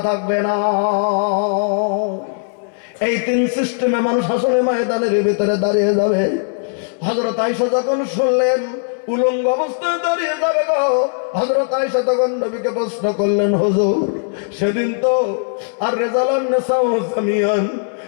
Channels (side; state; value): right; silent; 67 dB below the other